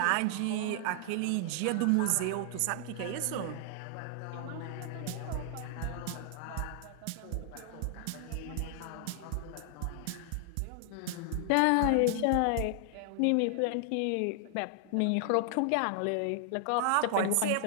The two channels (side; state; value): both; different; correlation 0.00